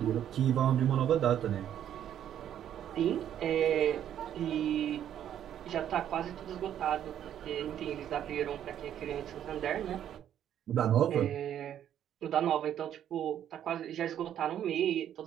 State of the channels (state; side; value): quieter; left; 10.3 dB